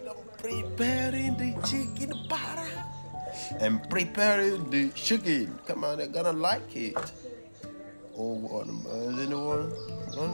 I'm preparing the chicken para. I'm preparing the chicken. Come on, they're gonna like it. Oh, what is anyone? I'm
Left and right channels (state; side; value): inverted; both; correlation -1.00